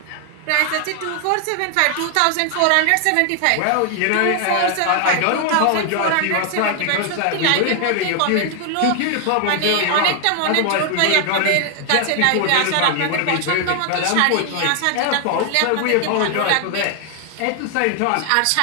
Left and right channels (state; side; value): different; both; correlation 0.00